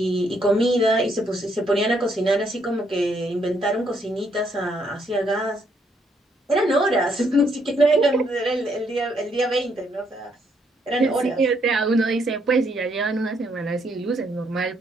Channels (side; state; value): both; normal; correlation 0.72